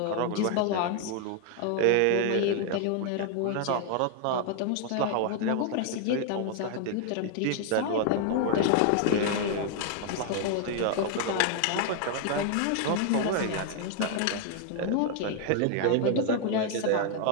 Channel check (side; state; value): both; different; correlation 0.00